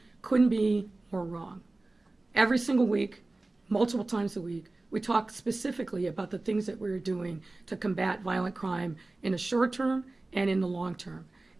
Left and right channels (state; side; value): quieter; left; 3.0 dB